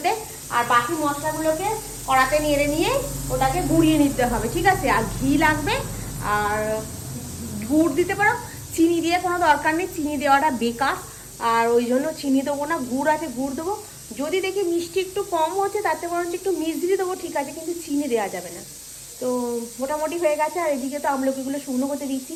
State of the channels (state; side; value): identical; both; correlation 1.00